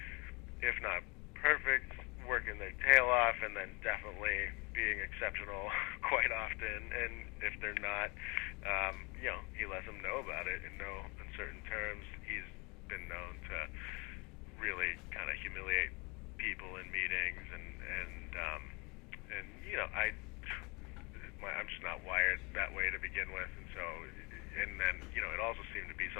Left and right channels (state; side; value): quieter; right; 28.6 dB